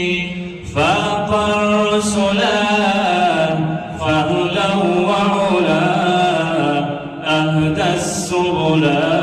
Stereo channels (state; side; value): identical; both; correlation 1.00